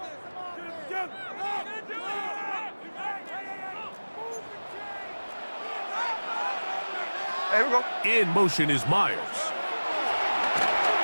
Here we go. In motion is Myers.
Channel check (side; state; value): both; inverted; correlation -1.00